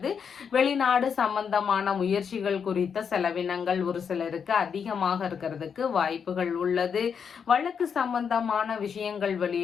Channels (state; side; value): quieter; right; 6.8 dB